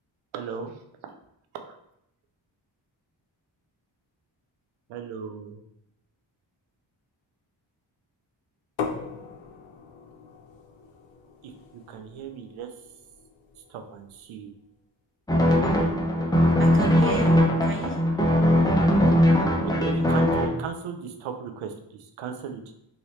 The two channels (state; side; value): normal; both; correlation 0.72